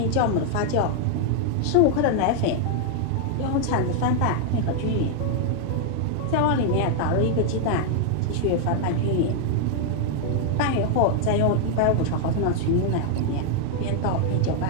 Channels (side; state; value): both; different; correlation 0.00